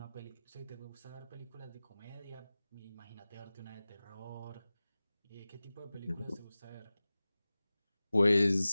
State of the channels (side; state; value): both; inverted; correlation -0.97